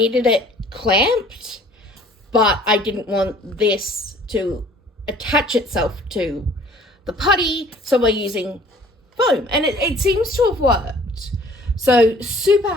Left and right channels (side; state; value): both; normal; correlation 0.54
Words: it clamped, but I didn't want this to attach itself to the putty, so we're using foam, and it seems to have worked. So super